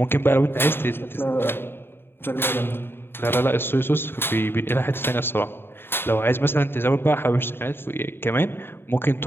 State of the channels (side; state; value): right; late; 0.11 ms